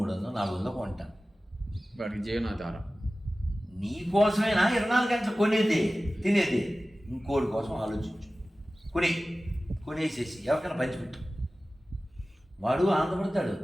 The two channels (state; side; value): normal; both; correlation 0.96